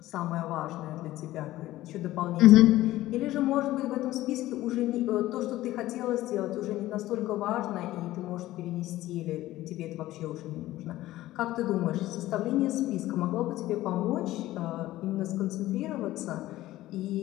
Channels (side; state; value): right; quieter; 15.8 dB